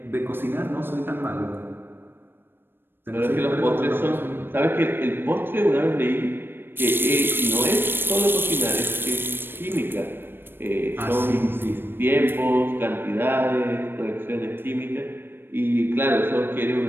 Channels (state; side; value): late; left; 0.099 ms